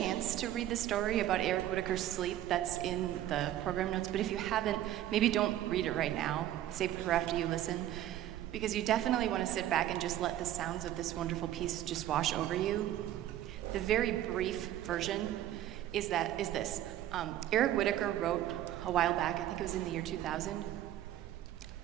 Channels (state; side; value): quieter; left; 12.7 dB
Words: to read the story about Eric Whitacre's sleep that's in the program notes, but if you haven't, maybe don't read it right now. Save it for after you listen, because you definitely want to sit back and just let the sounds of this wonderful piece just wash over you. The very brief version is this. Eric Whitacre wrote a while back, I think it was in the year 2000.